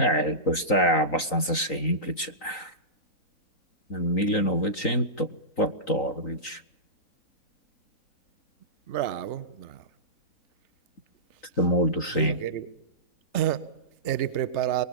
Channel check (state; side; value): late; right; 3.9 ms